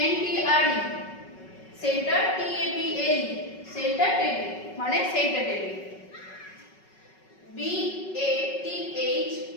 N T R E, centre, T A B L E, centre table মানে centre table. B A T H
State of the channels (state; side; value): late; right; 5.4 ms